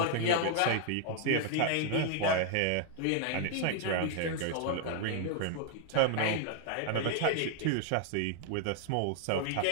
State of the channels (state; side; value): different; both; correlation 0.00